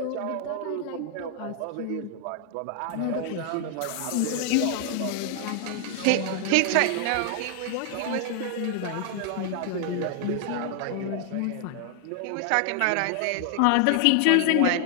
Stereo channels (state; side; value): different; both; correlation 0.00